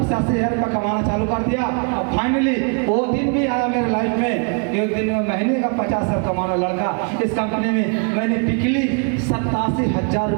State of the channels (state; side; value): quieter; left; 38.6 dB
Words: से 80 हज़ार रुपये कमाना चालू कर दिया। और फाइनली वो दिन भी आया मेरे लाइफ में, एक दिन में महीने का 50 हज़ार कमाना लड़का। इस कंपनी में मैंने पिछली 87,000